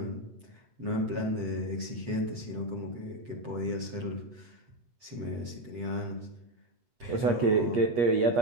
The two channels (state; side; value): late; left; 7.8 ms